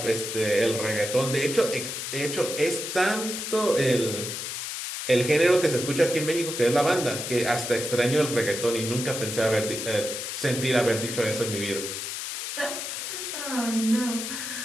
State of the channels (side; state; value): left; noise; hiss, 5 dB below the sound